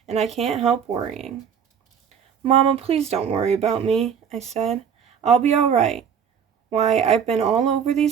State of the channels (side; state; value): left; quieter; 7.5 dB